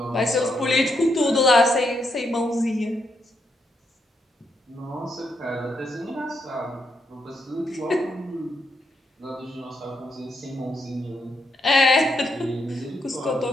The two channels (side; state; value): both; normal; correlation 0.79